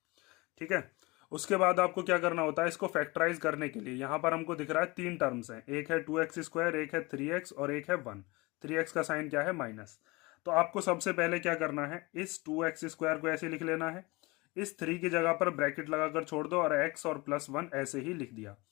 ठीक है। उसके बाद आपको क्या करना होता है, इसको फैक्टराइज करने के लिए यहाँ पर हमको दिख रहा है तीन टर्म्स हैं, एक है 2x², एक है 3x और एक है 1। 3x का साइन क्या है, माइनस। तो आपको सबसे पहले क्या करना है, इस 2x² को ऐसे लिख लेना है, इस 3 की जगह पर ब्रैकेट लगाकर छोड़ दो और x और प्लस 1 ऐसे ही लिख दिया।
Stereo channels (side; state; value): right; quieter; 24.4 dB